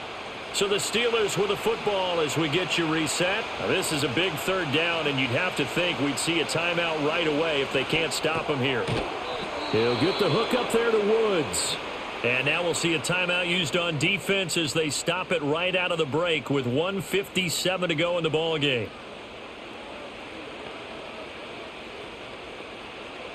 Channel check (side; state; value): both; identical; correlation 1.00